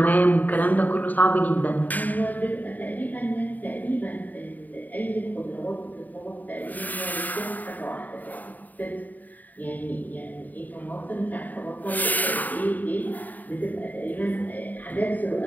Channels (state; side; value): late; right; 0.083 ms